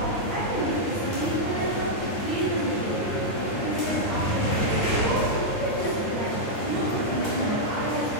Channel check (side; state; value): right; late; 9.5 ms